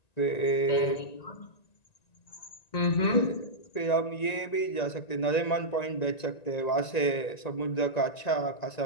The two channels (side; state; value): right; late; 1.9 ms